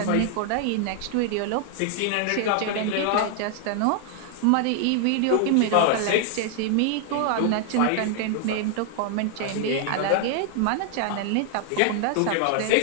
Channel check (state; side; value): different; both; correlation 0.00